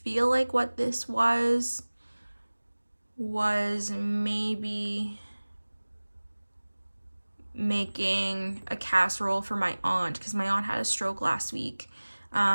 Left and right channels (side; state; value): both; inverted; correlation -1.00